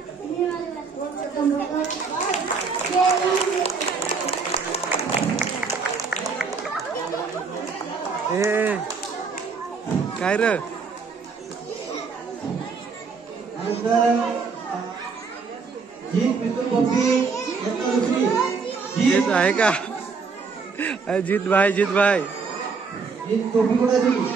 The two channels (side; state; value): left; quieter; 5.0 dB